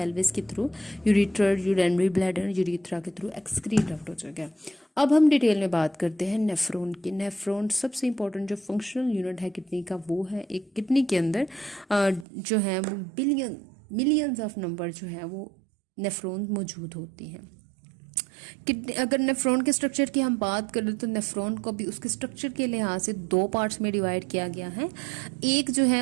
के through ureter, urinary bladder, urethra के थ्रू एक्सक्रीट आउट हो जाएगा। अब हम डिटेल में बात करते हैं नेफ्रॉन की। नेफ्रॉन सबसे इंपॉर्टेंट जो फंक्शनल यूनिट है किडनी का वो है। एक किडनी के अंदर जो है वो मिलियंस ऑफ नंबर जो है वो नेफ्रॉन मौजूद होती हैं। किडनी, अगर नेफ्रॉन के स्ट्रक्चर की हम बात करें तो नेफ्रॉन को भी उसके स्ट्रक्चर के लिहाज से दो पार्ट्स में डिवाइड किया गया है। एक जो है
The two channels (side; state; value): left; drops out; at 12.2 s